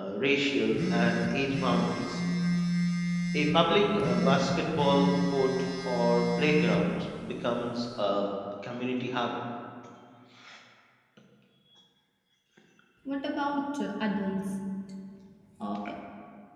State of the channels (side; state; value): both; identical; correlation 1.00